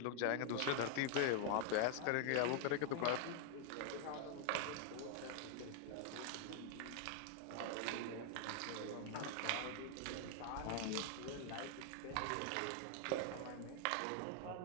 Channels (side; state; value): both; different; correlation 0.00